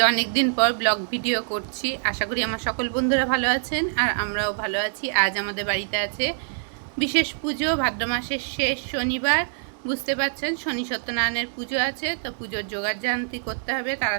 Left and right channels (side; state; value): left; silent; digital silence